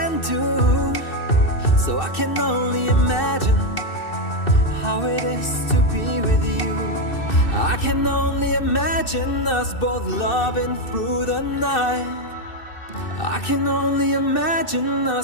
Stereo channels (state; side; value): late; right; 2.6 ms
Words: do. So I can only imagine how it is to be with you. I can only imagine us both loving through the night. I can only imagine